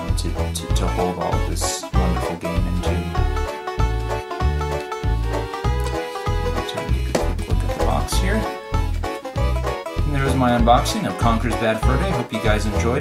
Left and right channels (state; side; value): identical; both; correlation 1.00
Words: to hold all of this wonderful game into. Take a quick look at the box here. And there's my my unboxing of Conker's Bad Fur Day. Hope you guys